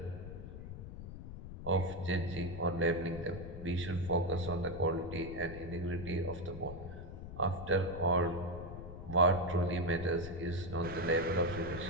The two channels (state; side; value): noise; left; rumble, 10 dB below the sound